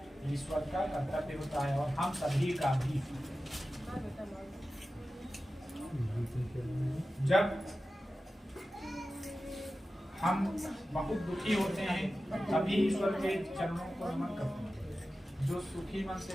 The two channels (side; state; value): both; normal; correlation 0.94